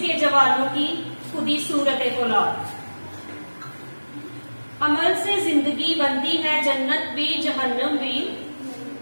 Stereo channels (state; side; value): inverted; both; correlation -1.00